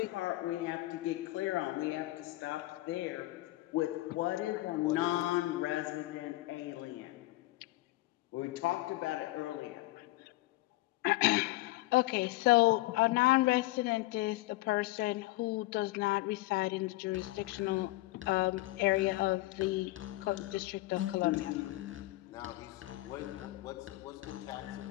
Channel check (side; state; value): right; quieter; 19.1 dB